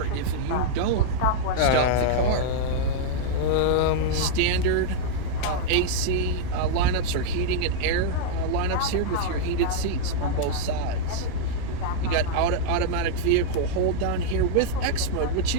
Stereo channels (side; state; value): both; different; correlation -0.02